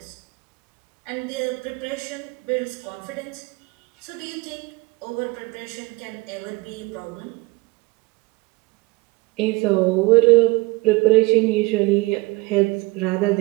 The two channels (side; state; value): left; quieter; 24.0 dB